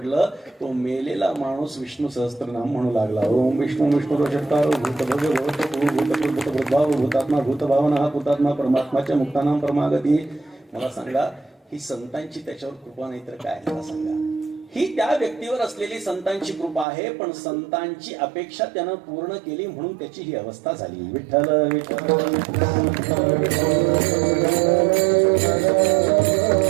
तो मेलेला माणूस विष्णू सहस्त्रनाम म्हणू लागला. ओम विष्णू विष्णू षटकार भूत भव्य भूत भूतात्मा भूतभावना हा भूतात्मा परमात्माच्या मुक्तानाम परमागती. मला सांगा ही संतांची त्याच्यावर कृपा नाही तर काय? मला सांगा. ही त्या व्यक्तीवर असलेली संतांची कृपा आहे. पण संतांची अपेक्षा त्यानं पूर्ण केली म्हणून त्याची ही अवस्था झाली. विठ्ठल विठ्ठल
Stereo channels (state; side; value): drops out; left; at 16.9 s